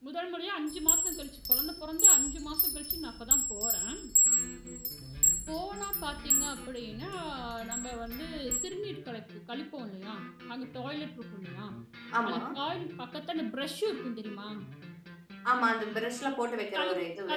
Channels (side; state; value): both; identical; correlation 1.00